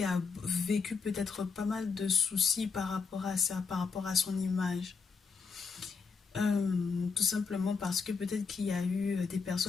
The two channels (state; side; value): quieter; right; 5.2 dB